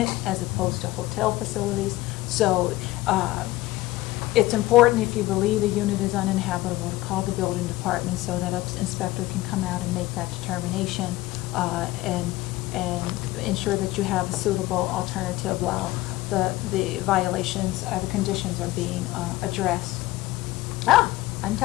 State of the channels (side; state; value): right; quieter; 17.8 dB